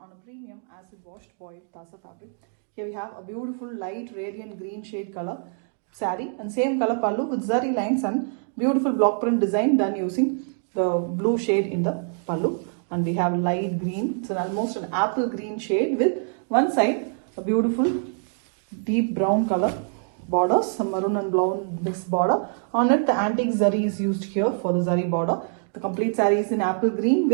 on a premium acid washed boiled Tassa fabric. Here we have a beautiful light radiant green shade color saree, and same color pallu with zari lines and beautiful block print design done using the blue shade in the pallu, and we have light green. It's almost an apple green shade with one side a beautiful deep brown color borders, some maroon and brown mixed border. On it, the antique zari is used here for the zari border. The complete saree is in apple green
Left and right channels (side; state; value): left; silent; 62 dB below the other